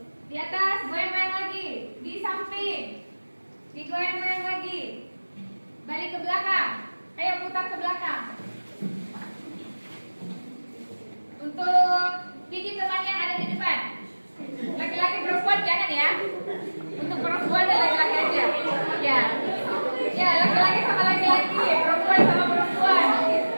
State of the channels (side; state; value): both; inverted; correlation -1.00